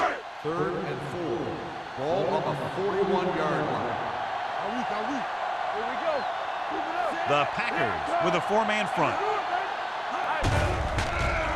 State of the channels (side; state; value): both; identical; correlation 1.00